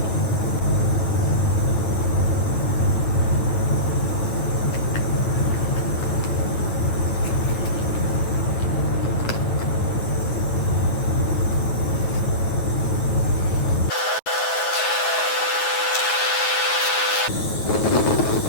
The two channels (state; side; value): late; right; 9.3 ms